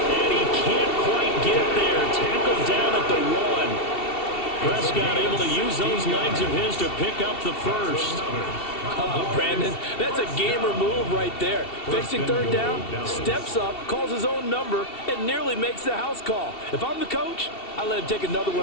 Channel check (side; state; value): right; late; 2.7 ms